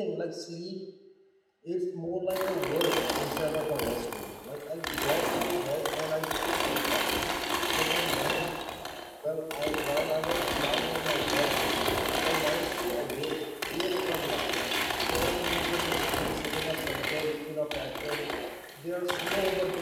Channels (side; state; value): both; identical; correlation 1.00